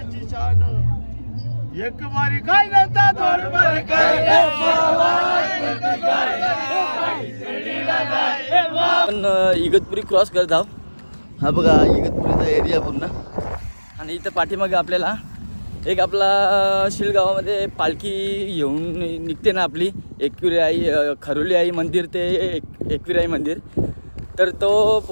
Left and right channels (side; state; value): both; inverted; correlation -1.00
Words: शान. एक वारी काय नव्हता, दोन वारी काय आपण इगतपुरी क्रॉस करत आहोत. हा बघा इगतपुरीचा एरिया पूर्ण. आणि इथं पाठीमागे आपल्याला एक आपला शिळगावामध्ये पालखी येऊन निघते ना आपली, एकविरा आई खरोली आई मंदिर ते एकविरा आई मंदिर. तर तो